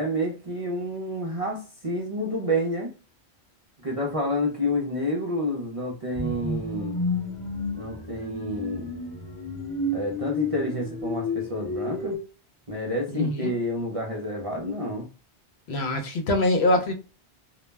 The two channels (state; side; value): normal; both; correlation -0.15